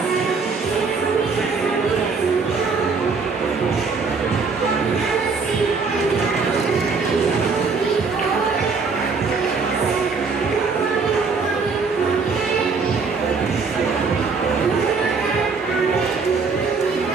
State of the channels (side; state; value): left; quieter; 4.7 dB